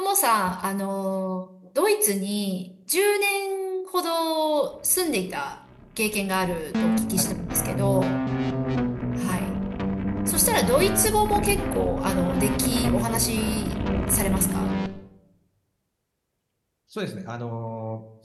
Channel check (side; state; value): both; identical; correlation 1.00